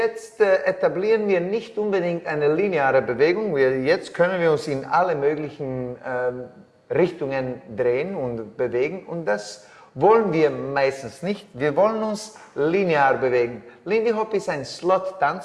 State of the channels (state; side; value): identical; both; correlation 1.00